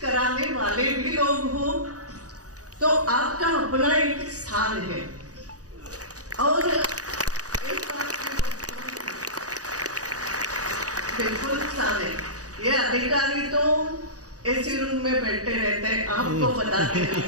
कराने वाले भी लोग हो, तो आपका अपना एक स्थान है। और एक बात बिल्कुल स्थान है, ये अधिकारी तो ऐसे रूम में बैठे रहते हैं, आपको बताते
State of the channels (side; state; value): left; late; 0.67 ms